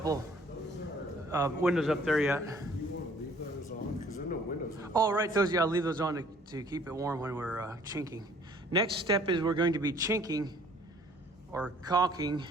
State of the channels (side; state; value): both; normal; correlation 0.57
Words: windows up there yet. You want to leave those on? Because there are no windows. Oh, right, those, yeah, I'll leave those on to keep it warm when we're chinking. Next step is we're going to be chinking or caulking